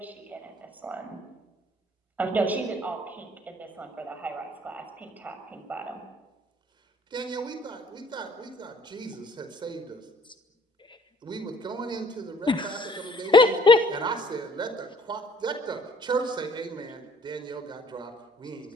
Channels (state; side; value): normal; both; correlation 0.58